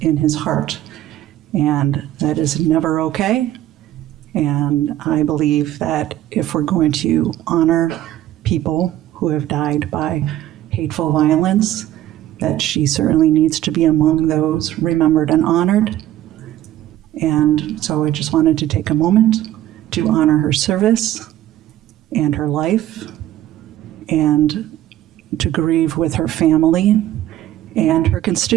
in his heart, and that is never okay. And I believe that if we're going to honor people who have died by hateful violence, that she certainly needs to be among those remembered and honored. And so I just wanted to take a moment to honor her service and her life and to grieve with her family and her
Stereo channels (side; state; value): left; quieter; 13.2 dB